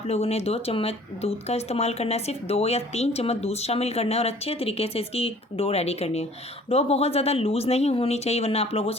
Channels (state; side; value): normal; both; correlation 0.52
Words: लोगों ने 2 चम्मच दूध का इस्तेमाल करना है, सिर्फ 2 या 3 चम्मच दूध शामिल करना है और अच्छे तरीके से इसकी डो रेडी करनी है। डो बहुत ज़्यादा लूज़ नहीं होनी चाहिए, वरना आप लोगों